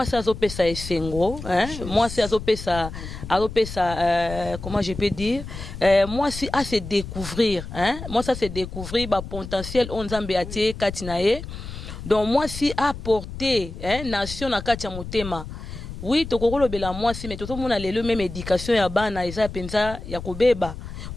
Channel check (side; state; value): left; noise; rumble, 10 dB below the sound